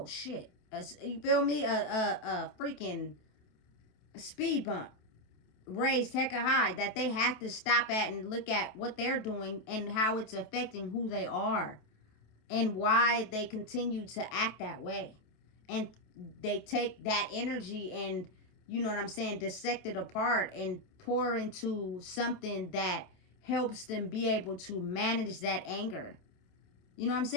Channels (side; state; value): right; late; 27 ms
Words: shit. You feel me? A freaking speed bump raised hecka high that they have to stop at and look at what they're doing and how it's affecting who they are and why they continue to act that way. And they take that energy and, you know what I'm saying, dissect it apart and pour into something that helps them be able to manage that anger. You know what I'm